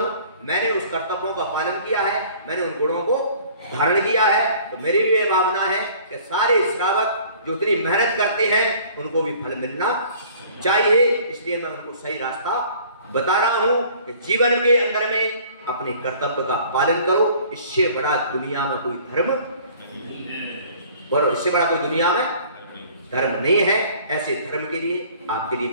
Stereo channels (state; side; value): inverted; both; correlation -0.52